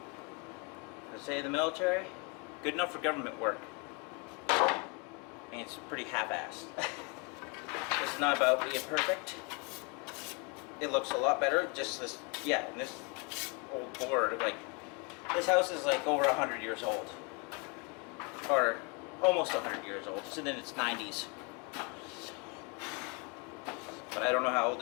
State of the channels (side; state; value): right; quieter; 31.2 dB